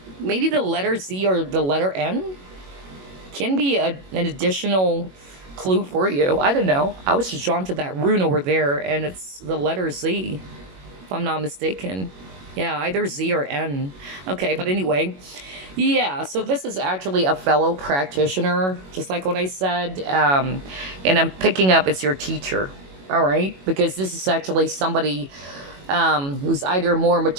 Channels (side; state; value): left; late; 21 ms